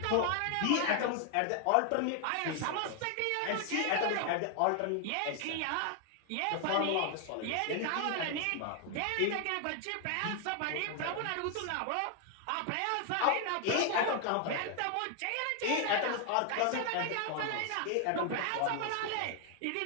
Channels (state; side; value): different; both; correlation 0.00